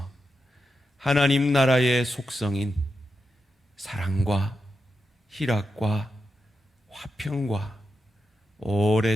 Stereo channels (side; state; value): both; normal; correlation 0.88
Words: 하나님 나라의 속성인 사랑과 희락과 화평과